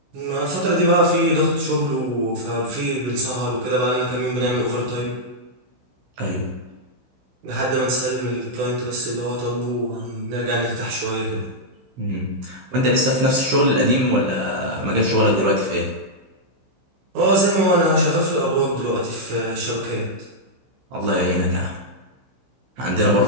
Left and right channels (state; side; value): late; left; 15 ms